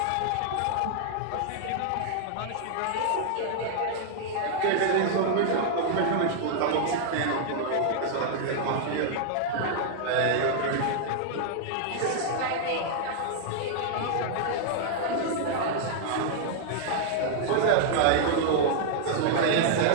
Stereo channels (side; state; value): both; different; correlation 0.00